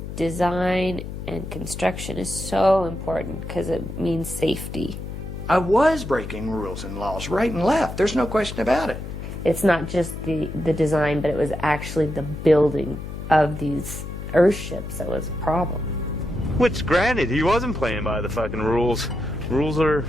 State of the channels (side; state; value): left; noise; hum, 8 dB below the sound